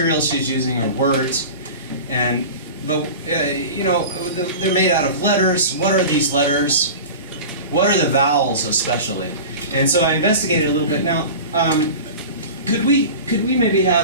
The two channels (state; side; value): inverted; both; correlation -0.34